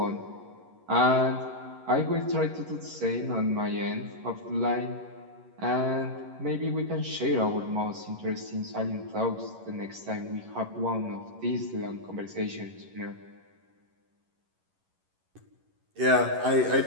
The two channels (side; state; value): left; late; 11 ms